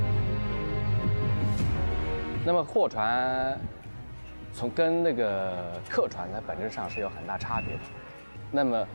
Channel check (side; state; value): both; inverted; correlation -1.00